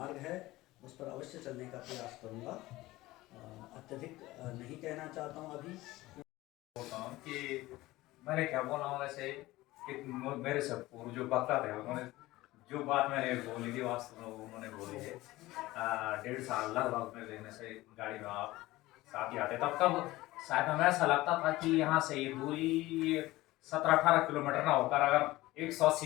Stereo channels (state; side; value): quieter; right; 18.3 dB